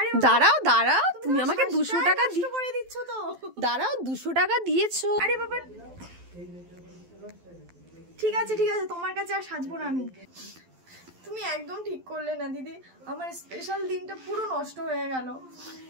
দাঁড়াও দাঁড়াও, তুমি আমাকে 200 টাকা করে দিচ্ছ তো। দাঁড়াও 200 টাকা দিয়েছো। আরে বাবা ঠিক আছে ঠিক আছে, তোমার কাছে আর সাজবো না আমি। তুমি একদম ঠিক করলে না দিদি, আমার স্পেশাল দিনটা পুরো নষ্ট হয়ে গেল।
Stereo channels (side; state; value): left; late; 12 ms